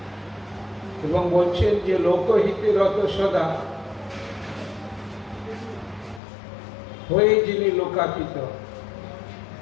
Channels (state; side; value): drops out; right; at 6.2 s